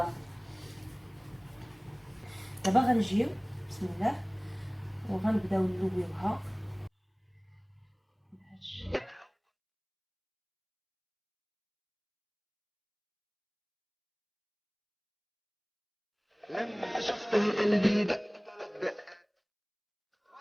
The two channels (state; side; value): identical; both; correlation 1.00